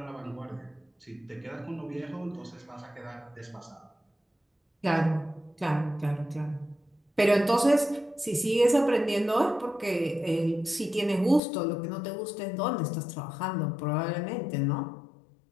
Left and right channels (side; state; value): right; drops out; at 11.4 s